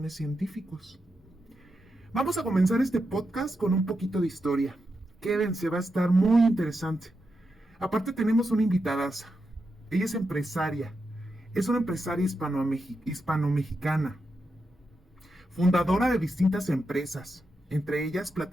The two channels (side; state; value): both; normal; correlation 0.86